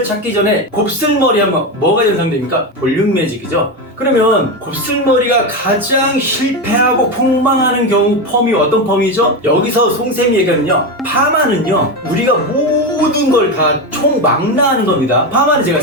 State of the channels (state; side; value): normal; both; correlation 0.15